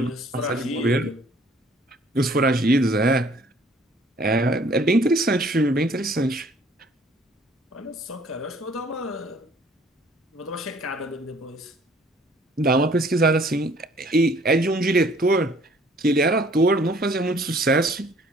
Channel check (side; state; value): both; normal; correlation 0.57